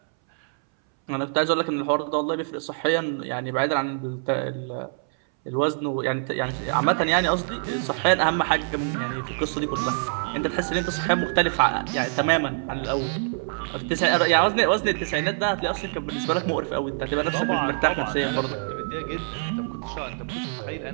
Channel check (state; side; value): silent; left; 62 dB below the other